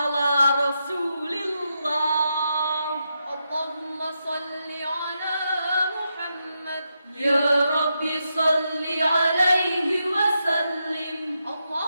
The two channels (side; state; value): both; inverted; correlation -0.84